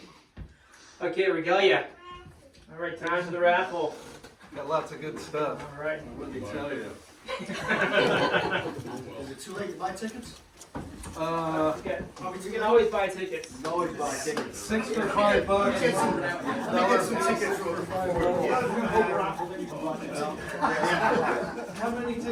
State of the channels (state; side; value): identical; both; correlation 1.00